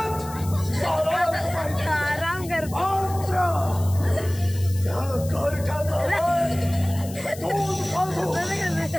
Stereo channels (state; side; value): noise; left; hiss, 16 dB below the sound